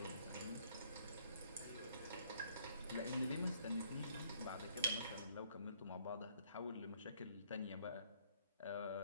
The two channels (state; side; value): inverted; both; correlation -0.64